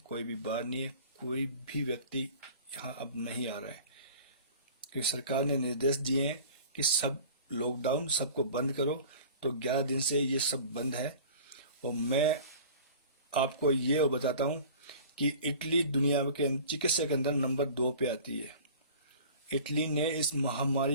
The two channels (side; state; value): both; inverted; correlation -0.43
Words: भी बार नहीं है, कोई भी व्यक्ति यहाँ अब नहीं आ रहा है, क्योंकि सरकार ने निर्देश दिए हैं कि सब लॉकडाउन, सबको बंद करो। तो 11 दिन से ये सब बंद है। और मैं आपको ये बताता हूँ कि इटली दुनिया के चिकित्सा के अंदर नंबर 2 पे आती है। इटली ने इस